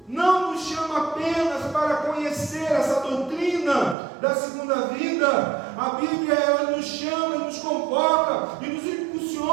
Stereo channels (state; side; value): drops out; left; at 4.0 s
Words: não nos chama apenas para conhecer essa doutrina da segunda vida. A Bíblia ela nos chama, nos convoca e nos